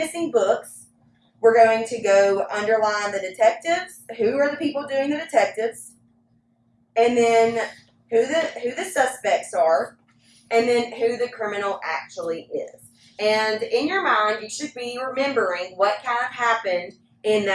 Books, we're going to go underline the detectives. Who are the people doing the detectives? And then who the suspects are, and then who the criminal actually is. And in your mind, you should be remembering what kind of happened in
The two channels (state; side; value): identical; both; correlation 1.00